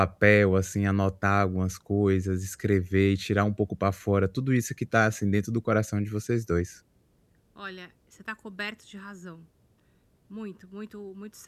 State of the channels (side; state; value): both; identical; correlation 1.00